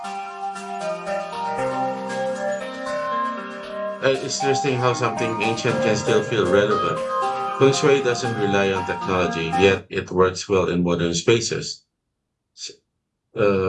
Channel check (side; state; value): both; identical; correlation 1.00